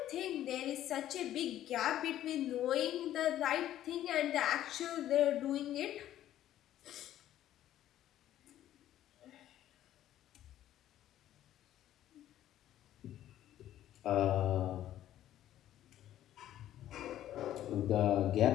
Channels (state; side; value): quieter; right; 12.5 dB